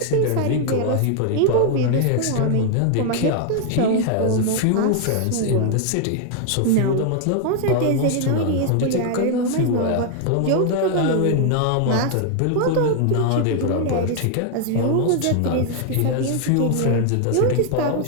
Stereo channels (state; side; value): different; both; correlation 0.00